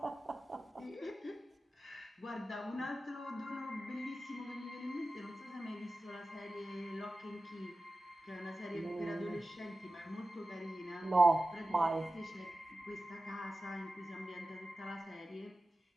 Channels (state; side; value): normal; both; correlation 0.95